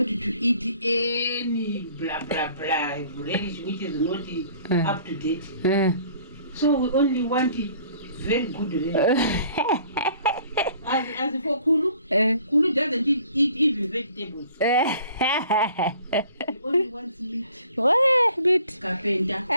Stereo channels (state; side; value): inverted; both; correlation -0.55